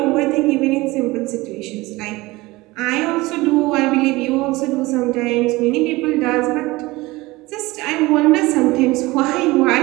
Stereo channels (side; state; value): left; quieter; 20.8 dB